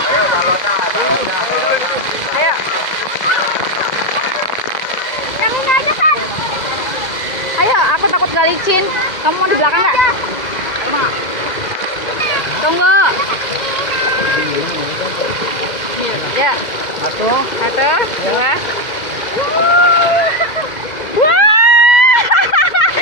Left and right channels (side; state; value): right; late; 2.0 ms